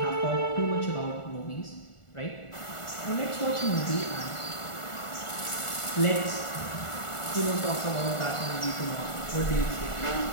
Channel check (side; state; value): right; late; 1.4 ms